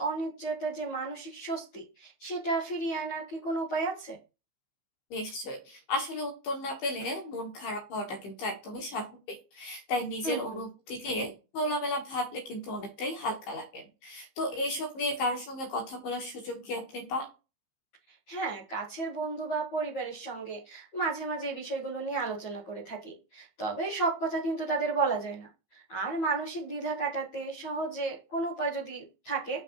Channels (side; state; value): right; late; 15 ms